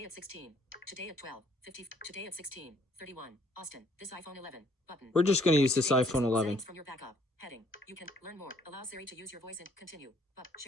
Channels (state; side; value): normal; both; correlation 0.63